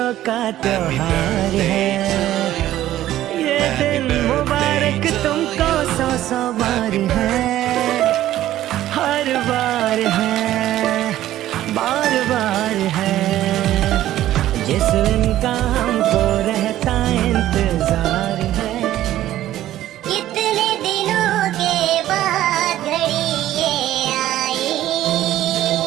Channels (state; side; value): quieter; left; 13.6 dB